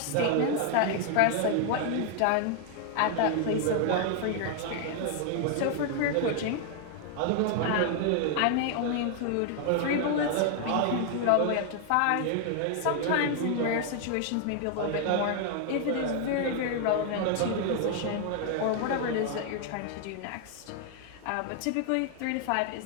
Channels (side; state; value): both; different; correlation 0.00